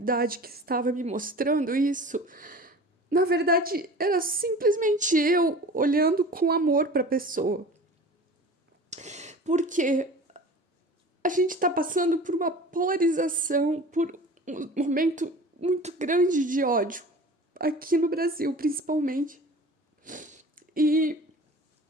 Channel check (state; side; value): normal; both; correlation 0.40